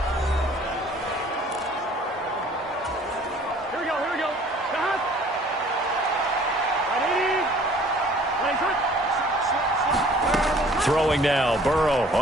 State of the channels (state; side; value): normal; both; correlation 0.53